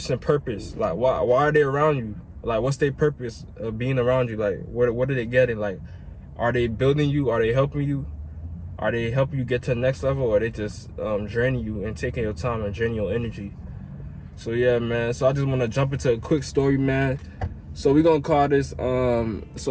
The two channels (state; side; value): identical; both; correlation 1.00